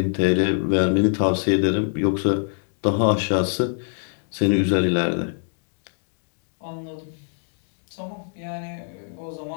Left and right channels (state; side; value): silent; right; digital silence